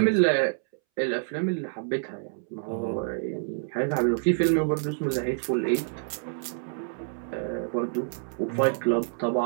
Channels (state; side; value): silent; left; 60 dB below the other